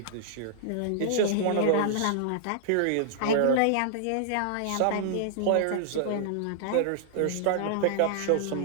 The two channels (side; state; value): both; different; correlation -0.01